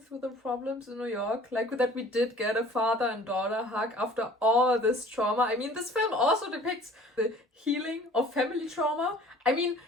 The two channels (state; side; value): normal; both; correlation 0.49